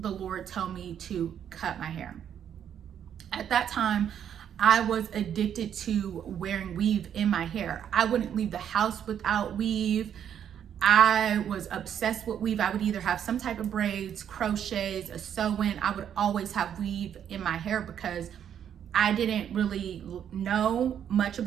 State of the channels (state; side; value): quieter; left; 9.1 dB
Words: Lord tell me to cut my hair. At that time, I was addicted to wearing weave in my hair. I wouldn't leave the house without weave. I was obsessed with weave. I would either have some type of braids, crochets, a sew-in. I would always have weave in my hair because I didn't really know much